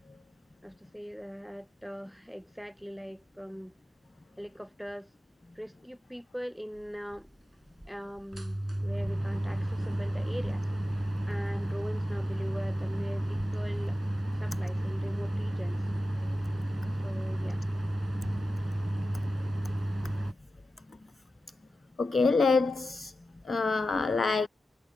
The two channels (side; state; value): both; normal; correlation 0.92